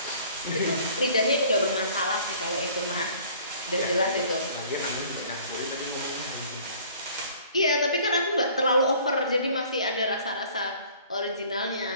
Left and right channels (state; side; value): inverted; both; correlation -0.52